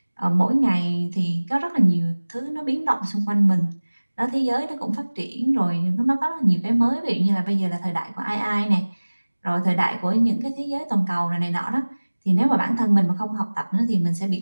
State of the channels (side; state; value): both; inverted; correlation -1.00